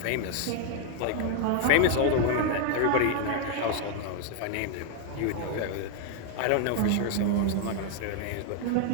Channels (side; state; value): both; different; correlation 0.00